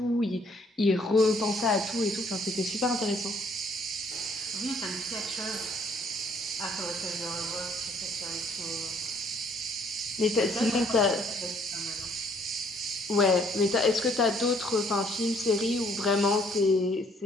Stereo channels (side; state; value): both; normal; correlation 0.63